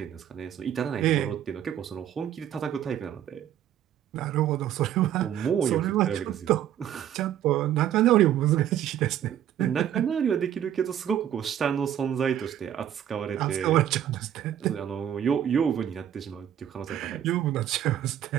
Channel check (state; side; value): quieter; left; 10.6 dB